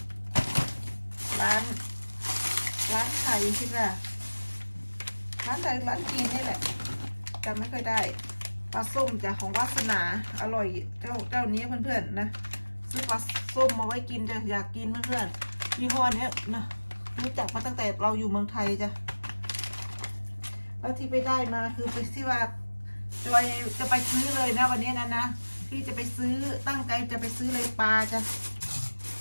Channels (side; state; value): both; inverted; correlation -1.00